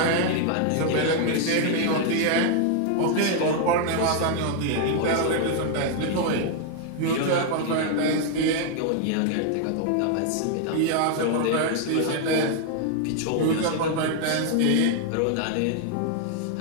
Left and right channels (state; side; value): different; both; correlation 0.00